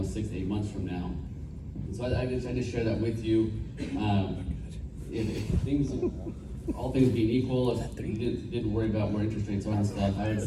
to 8 months from now. And so I just share that with you. If things, all things being equal, if you didn't worry about where interest rates are and stuff, I would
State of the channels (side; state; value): both; identical; correlation 1.00